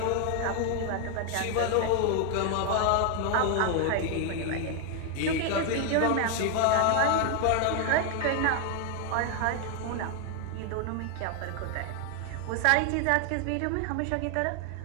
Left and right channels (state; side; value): different; both; correlation 0.01